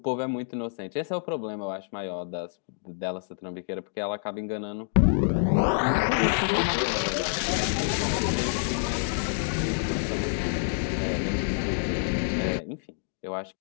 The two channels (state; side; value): silent; right; digital silence